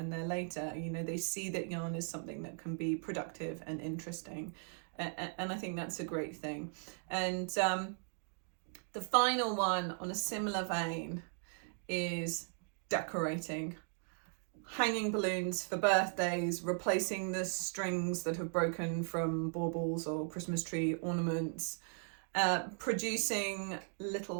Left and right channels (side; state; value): left; silent; 53 dB below the other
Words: they're later. You know, they see that yarn is something that can be productive and interesting, and I think that's a great thing. And the final one on a similar vein is decorating. Hanging balloons for birthdays, replacing the strings that have broken from baubles or Christmas tree ornaments, producing